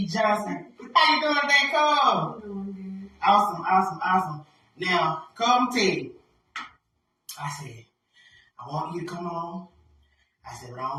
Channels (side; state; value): both; identical; correlation 1.00